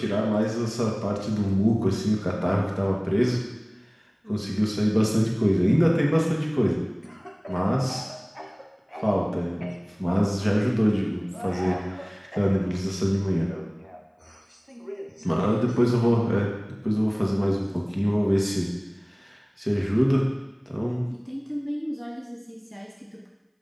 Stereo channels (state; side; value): identical; both; correlation 1.00